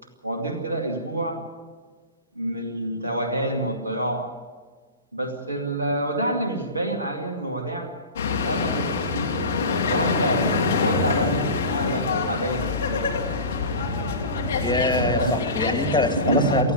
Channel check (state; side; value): inverted; both; correlation -0.32